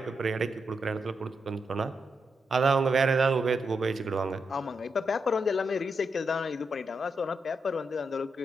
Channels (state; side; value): normal; both; correlation 0.83